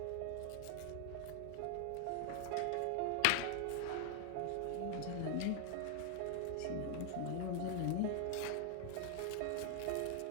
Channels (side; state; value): both; different; correlation 0.00